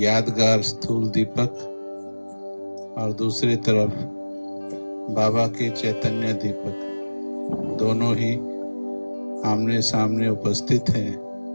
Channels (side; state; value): both; inverted; correlation -1.00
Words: स्थूल दीपक और दूसरी तरफ बाबा के चैतन्य दीपक, दोनों ही आमने सामने उपस्थित हैं।